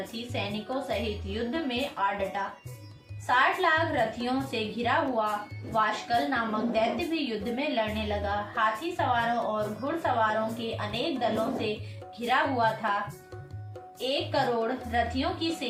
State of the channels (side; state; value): both; identical; correlation 1.00